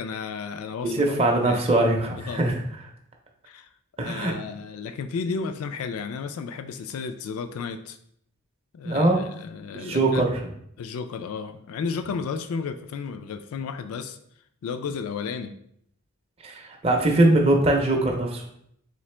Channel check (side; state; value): both; normal; correlation 0.50